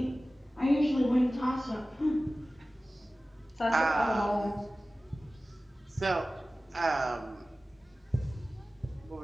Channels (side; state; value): both; normal; correlation 0.96